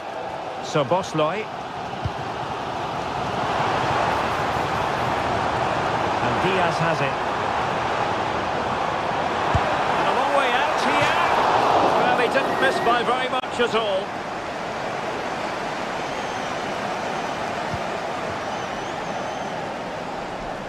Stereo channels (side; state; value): both; identical; correlation 1.00